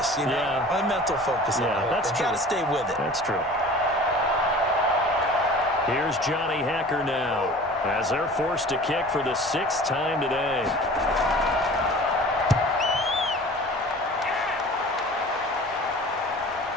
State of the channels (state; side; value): normal; both; correlation 0.42